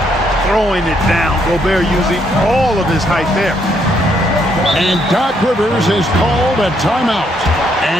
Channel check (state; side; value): normal; both; correlation 0.72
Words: Throwing it down. Gobert using all of his height there. And Doc Rivers has called a timeout.